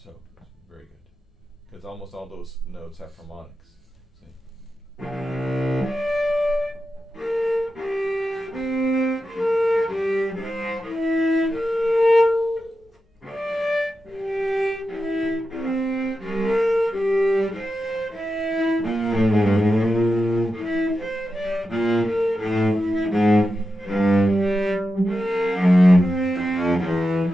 very good, because almost all those notes have harmonics. See?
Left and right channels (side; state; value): both; normal; correlation 0.90